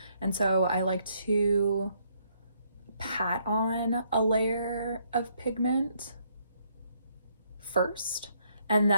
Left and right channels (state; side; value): inverted; both; correlation -0.71